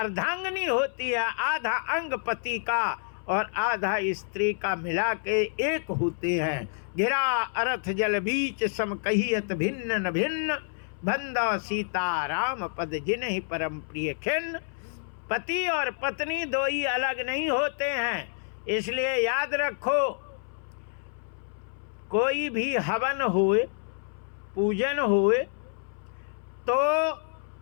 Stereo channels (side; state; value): right; silent; 59 dB below the other